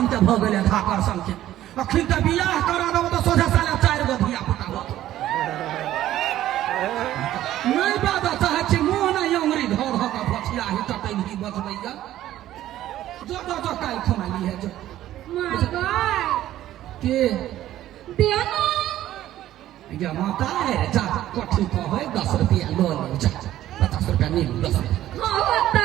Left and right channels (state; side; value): quieter; left; 13.3 dB